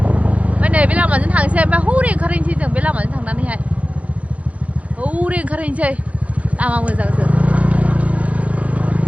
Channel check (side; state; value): left; late; 0.066 ms